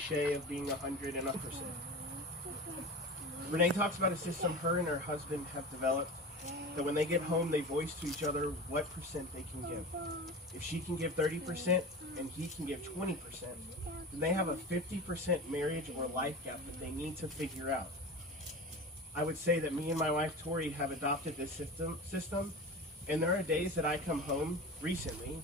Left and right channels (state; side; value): normal; both; correlation 0.31